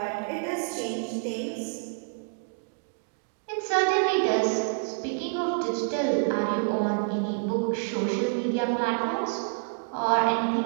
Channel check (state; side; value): silent; left; digital silence